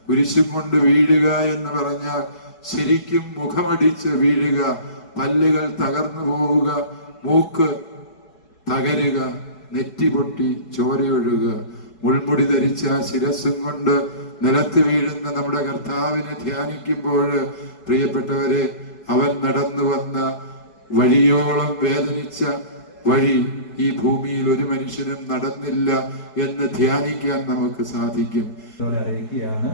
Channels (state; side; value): late; right; 4.7 ms